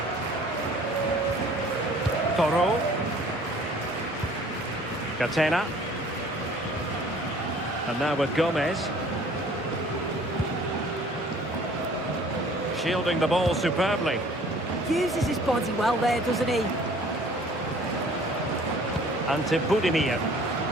Toro. Catena. And now with Gomez. Shielding the ball superbly. Uses his body well there, doesn't he? And to Budimir.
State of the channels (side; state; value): both; normal; correlation 0.53